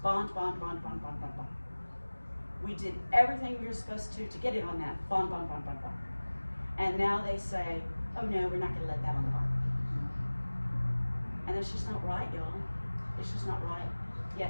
bond, bond, bond, bond, bond, bond, bond. We did everything we were supposed to get it on that, bond, bond, bond, bond, bond. And now they say, oh no, we're not gonna let that on the bond. And it's just not right, y'all. It's just not right.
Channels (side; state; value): both; inverted; correlation -1.00